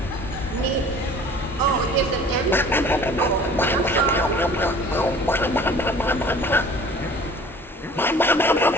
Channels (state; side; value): normal; both; correlation 0.47